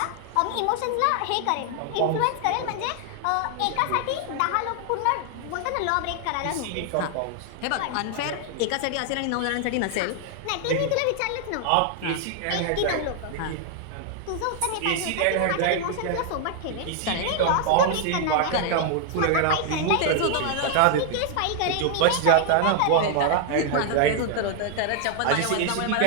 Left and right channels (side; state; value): both; different; correlation 0.00